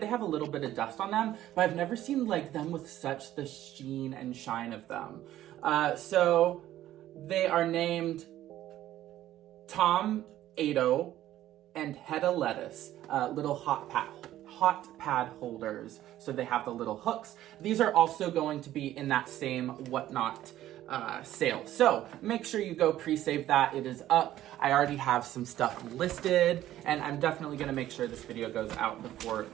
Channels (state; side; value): quieter; left; 13.4 dB